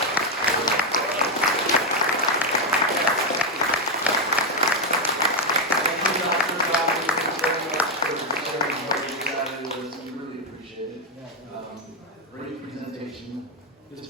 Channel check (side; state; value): both; normal; correlation 0.05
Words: Great presentation. This